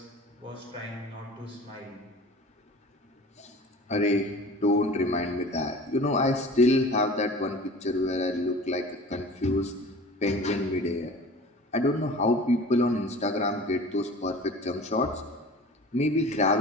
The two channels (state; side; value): normal; both; correlation 0.40